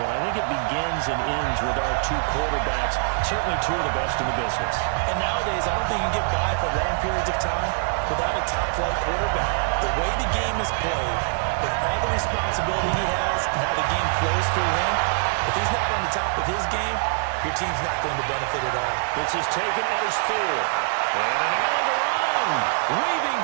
one. I think it begins and ends with our two quarterbacks, certainly two of the best in the business. And nowadays, I don't think you can get by for long periods of time without a top-flight quarterback. The way the game is played, with all the responsibility he has and how the game flows through him, if he's not on the top of his game, your team's not going to benefit at all. This is taken at his 4. And an alley to run. Weaving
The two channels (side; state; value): left; silent; 63 dB below the other